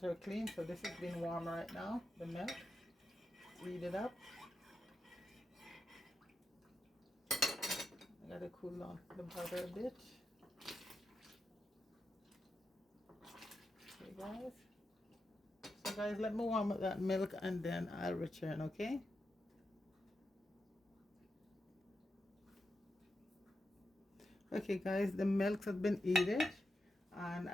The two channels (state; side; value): normal; both; correlation 0.87